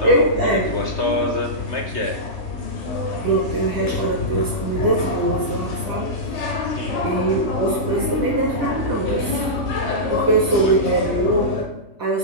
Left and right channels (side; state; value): right; late; 3.3 ms